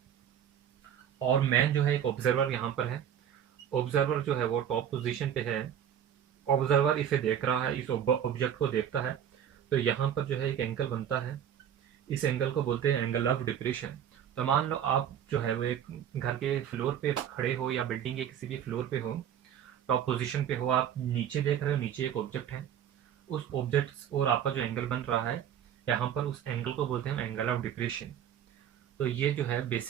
और मैन जो है एक ऑब्जर्वर यहाँ पर है। ऑब्जर्वर जो है वो टॉप पोजीशन पे है, ऑब्जर्वर इसे देख रहा है, इस ऑब्जेक्ट को देखता है, तो यहाँ पर जो है एक एंगल बनता है, इस एंगल को बोलते हैं एंगल ऑफ डिप्रेशन। तो मान लो आप जो है वो एक घर के फ्लोर पे खड़े हो या बिल्डिंग के किसी भी फ्लोर पे हो, टॉप पोजीशन पे हो, आप नीचे देख रहे हो, नीचे एक ऑब्जेक्ट है, उस ऑब्जेक्ट और आपका जो एंगल बन रहा है यहाँ पर, उस एंगल को बोलते हैं एंगल ऑफ डिप्रेशन। तो ये जो है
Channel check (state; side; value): quieter; left; 9.4 dB